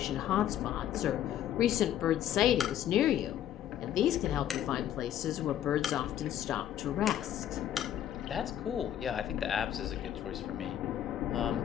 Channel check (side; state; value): right; quieter; 11.0 dB